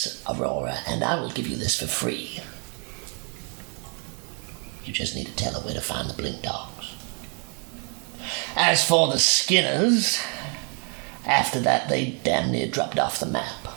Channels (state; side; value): quieter; left; 38.8 dB